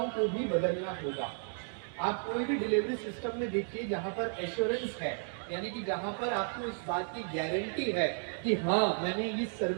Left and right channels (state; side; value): silent; left; 56 dB below the other